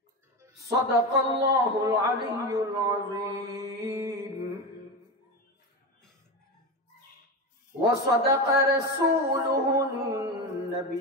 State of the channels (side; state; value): both; normal; correlation 0.19